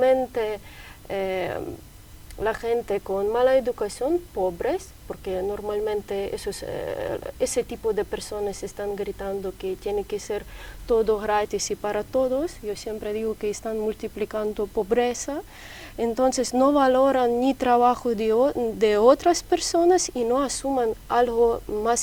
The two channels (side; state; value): both; identical; correlation 1.00